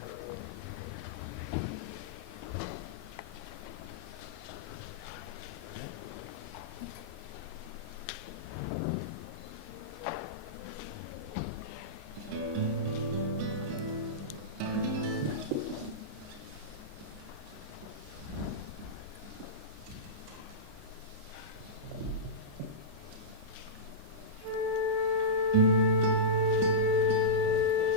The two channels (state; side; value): normal; both; correlation -0.15